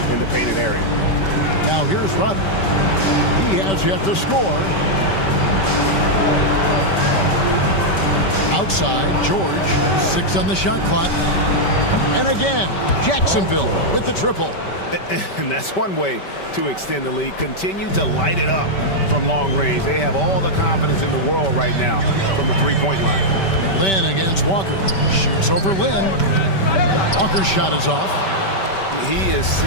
in the painted area. Now here's Rudd. He has yet to score. Outside, George. 6 on the shot clock. And again, Jacksonville with the triple. And that's one way to extend the lead. Continue to light it up from long range. They have all the confidence in the world right now from the three-point line. Lynn against Walker. Shoots over Lynn. Walker's shot is off. He is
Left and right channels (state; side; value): late; right; 5.2 ms